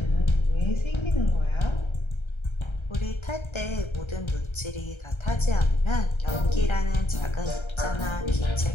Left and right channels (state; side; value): late; right; 1.3 ms